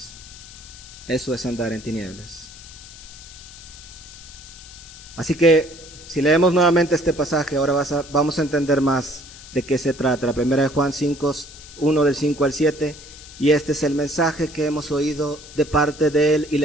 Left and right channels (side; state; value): left; noise; hiss, 17 dB below the sound